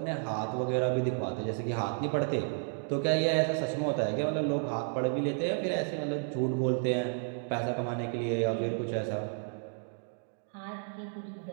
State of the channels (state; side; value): silent; left; 56 dB below the other